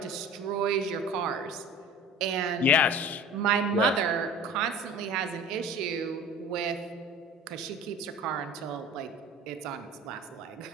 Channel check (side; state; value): both; normal; correlation 0.39